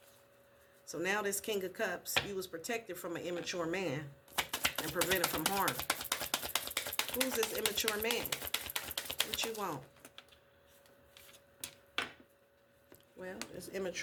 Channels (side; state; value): both; identical; correlation 1.00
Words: So now this King of Cups, you was protected from an immature man and prevented from harm. Who's this immature man? What you want? Well, this